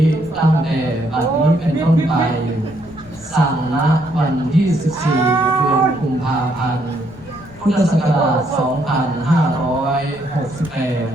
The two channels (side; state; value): left; noise; rumble, 22 dB below the sound